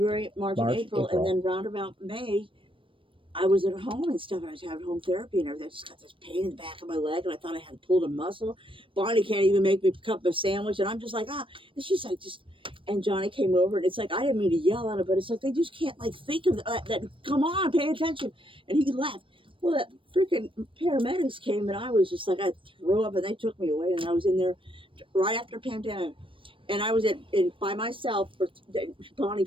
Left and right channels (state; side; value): late; left; 0.25 ms